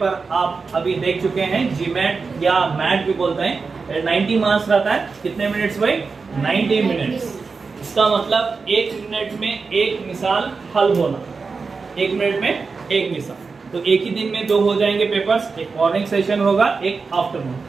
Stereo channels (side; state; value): left; quieter; 4.6 dB